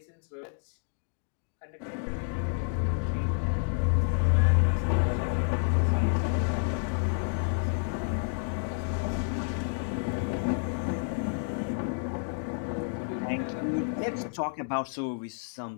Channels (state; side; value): silent; right; digital silence